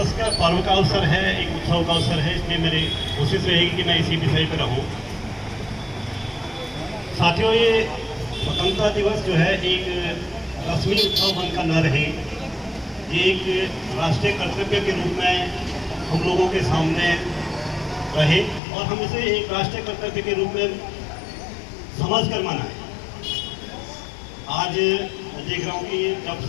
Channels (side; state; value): right; drops out; at 18.6 s